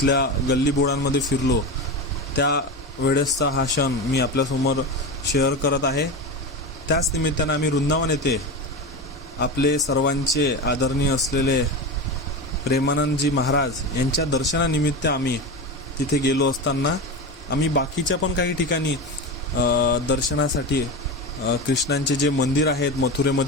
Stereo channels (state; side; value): normal; both; correlation 0.22